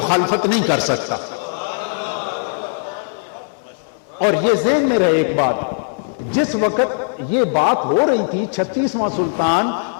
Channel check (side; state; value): right; silent; 61 dB below the other